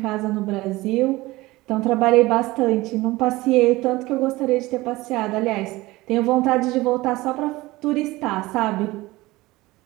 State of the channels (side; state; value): left; quieter; 19.8 dB